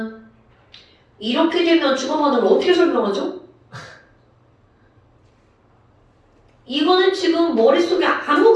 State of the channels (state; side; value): identical; both; correlation 1.00